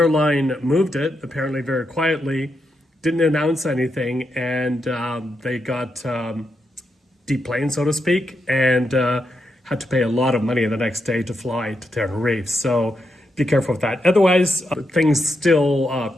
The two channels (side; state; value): both; normal; correlation 0.83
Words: moved it, apparently very quietly, didn't announce anything, and they got deplaned, so to speak, and had to pay a lot of money the next day to fly to Tenerife. So be careful with that. Otherwise, things still